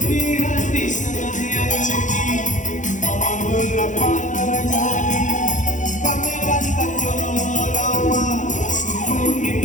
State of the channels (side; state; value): right; late; 0.36 ms